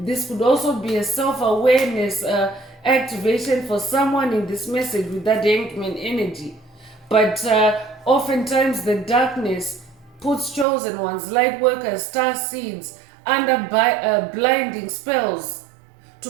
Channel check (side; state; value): left; drops out; at 10.7 s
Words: could also be a self-awareness activation for someone in this message with that Hangman energy. But oftentimes the darkness puts chosen ones, light workers, star seeds under blinding spells to